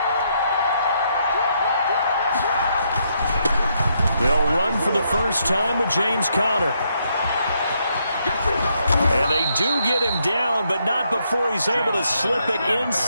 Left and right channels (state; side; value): inverted; both; correlation -0.76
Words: They'll run for the first time with James Conner. And they do get him down, but not before he's able to slip it